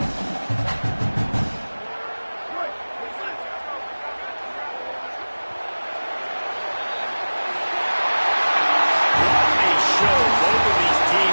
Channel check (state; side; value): inverted; both; correlation -1.00